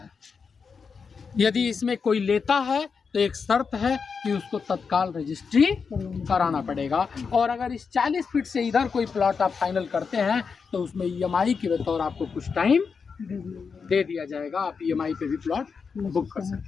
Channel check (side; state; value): right; quieter; 5.6 dB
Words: यदि इसमें कोई लेता है तो एक शर्त है कि उसको तत्काल रजिस्ट्री कराना पड़ेगा, और अगर इस 40 फीट से इधर कोई प्लॉट आप फाइनल करते हैं तो उसमें EMI के बतौर आपको कुछ टाइम दे दिया जाएगा, आप EMI पे भी प्लॉट बुक कर सकते